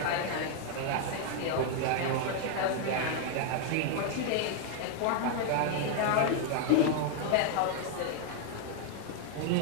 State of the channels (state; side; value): different; both; correlation 0.00